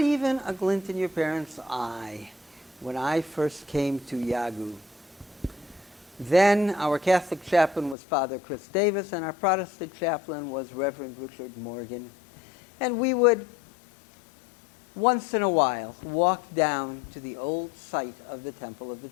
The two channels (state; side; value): drops out; right; at 8.0 s